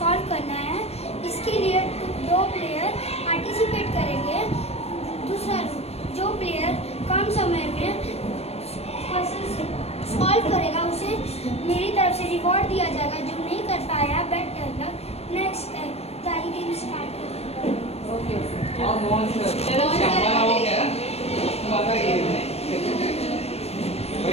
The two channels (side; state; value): right; late; 0.30 ms